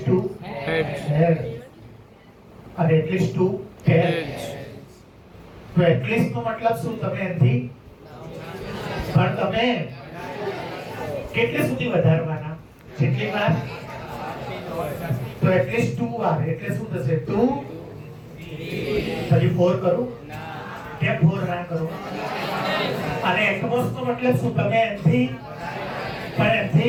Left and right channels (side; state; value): both; identical; correlation 1.00